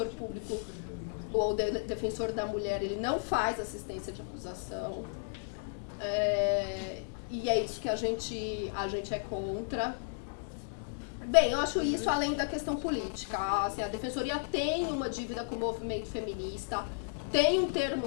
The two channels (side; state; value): right; silent; digital silence